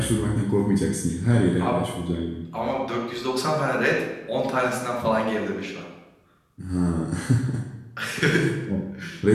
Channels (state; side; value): identical; both; correlation 1.00